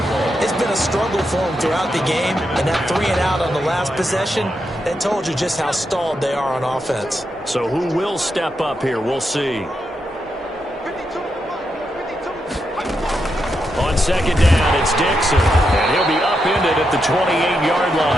It's been a struggle for them throughout the game, and that 3 and out on the last possession, that told you just how stalled they are on offense. So who will step up here? We'll see. on second down, it's Dixon. And he'll be upended at the 28-yard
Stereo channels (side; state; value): both; normal; correlation 0.84